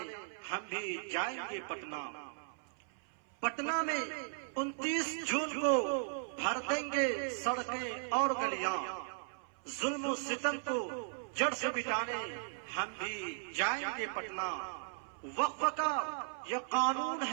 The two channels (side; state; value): left; silent; 53 dB below the other